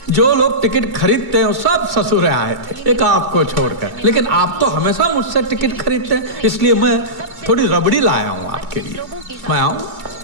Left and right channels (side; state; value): left; late; 2.3 ms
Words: जो लोग टिकट खरीदते हैं वो सब ससुर आए थे, एक आपको छोड़कर। लेकिन आप तो हमेशा मुझसे टिकट खरीदते हैं, इसलिए मैं थोड़ी रबड़ी लाया हूं आपके लिए। मैं आऊं?